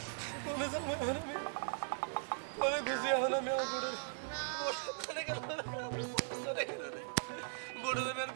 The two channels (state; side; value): silent; left; 52 dB below the other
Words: বলে যাবো আমি করে গেছি, এখন আমি আমার বড় বড় দেবেন